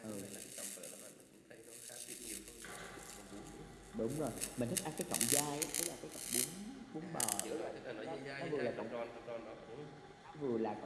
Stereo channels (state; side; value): identical; both; correlation 1.00